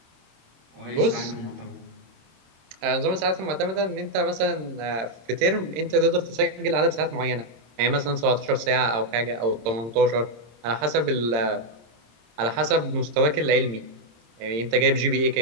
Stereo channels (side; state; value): left; late; 26 ms